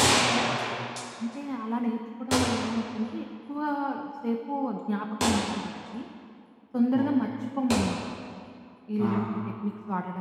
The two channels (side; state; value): both; identical; correlation 1.00